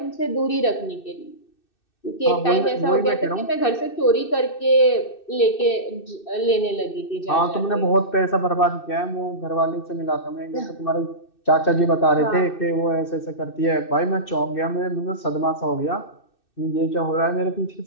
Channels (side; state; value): right; late; 2.6 ms